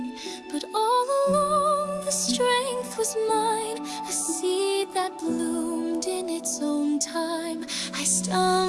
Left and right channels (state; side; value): identical; both; correlation 1.00